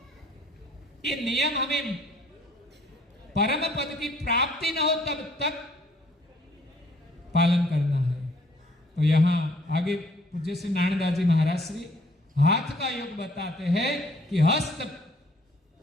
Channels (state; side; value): normal; both; correlation 0.60